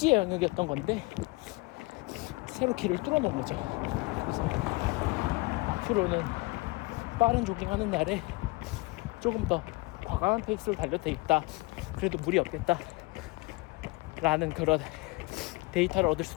영역이었던 건데 새로 길을 뚫어놓은 거죠. 그래서 앞으로는 빠른 조깅하는 날에 조금 더 과감한 페이스로 달려도 되겠다, 그래도 무리 없겠다 라는 그런 데이터를 얻을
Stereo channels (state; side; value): quieter; right; 25.2 dB